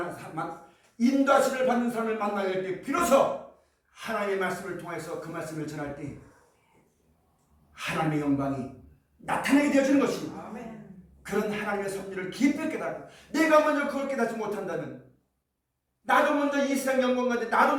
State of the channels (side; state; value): both; identical; correlation 1.00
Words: 받는 사람을 만나게 될 때 비로소 하나님의 말씀을 통해서 그 말씀을 전할 때 하나님의 영광이 나타나게 되어지는 것입니다. 아멘. 그런 하나님의 섭리를 깊이 깨닫고 내가 먼저 그걸 깨닫지 못한다면 나도 먼저 이 세상 영광 가운데 나도